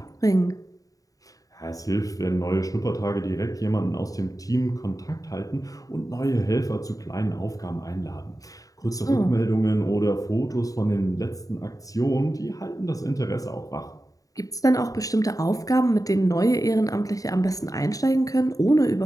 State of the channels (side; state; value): right; late; 0.17 ms